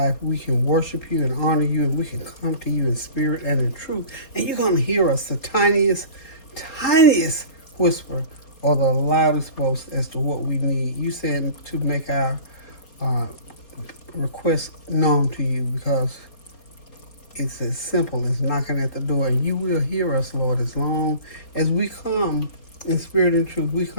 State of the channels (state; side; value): late; right; 4.2 ms